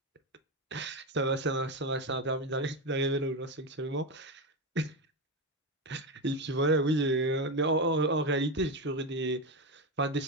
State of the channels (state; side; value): normal; both; correlation 0.14